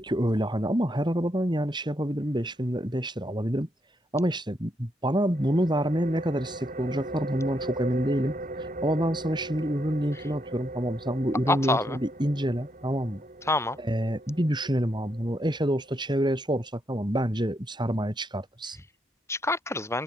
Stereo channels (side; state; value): both; normal; correlation 0.78